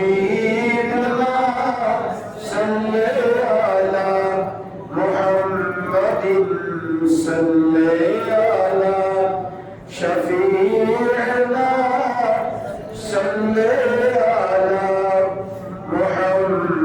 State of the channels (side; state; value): both; identical; correlation 1.00